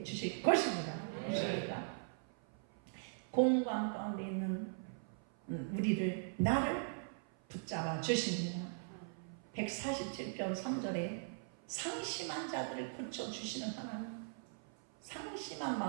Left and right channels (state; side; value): silent; left; 51 dB below the other